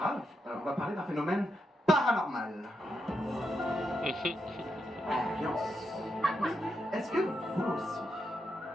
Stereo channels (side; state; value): both; normal; correlation 0.83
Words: On va parler d'un phénomène paranormal. Ambiance. Est-ce que vous aussi,